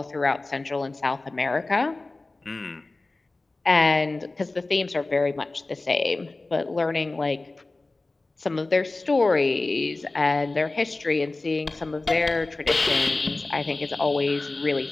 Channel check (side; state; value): right; quieter; 3.2 dB